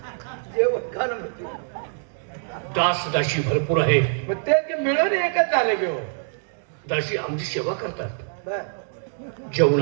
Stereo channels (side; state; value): left; silent; digital silence